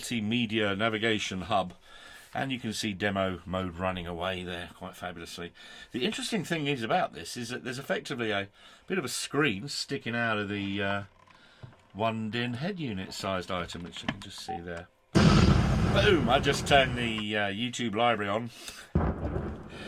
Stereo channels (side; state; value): both; identical; correlation 1.00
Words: navigation hub, and you can see demo mode running away there quite fabulously. The interesting thing is about this is that there's effectively a bit of a screen sticking out of the one DIN head unit sized item, which you can just see there. Boom! I just turned the YouTube library on.